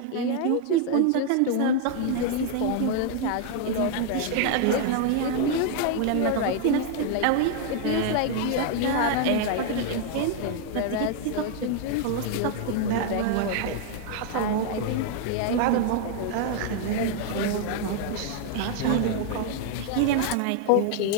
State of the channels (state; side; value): different; both; correlation 0.00